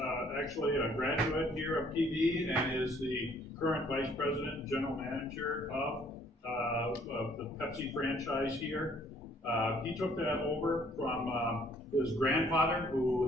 actually a graduate here of PV and is the current Vice President and General Manager of the Pepsi franchise here. He took that over from his grandfather,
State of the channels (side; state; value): both; normal; correlation 0.62